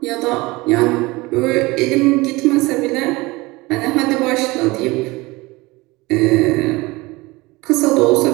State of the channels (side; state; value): left; quieter; 22.2 dB